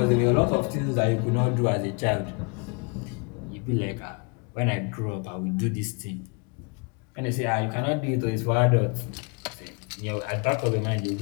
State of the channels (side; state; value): right; quieter; 32.9 dB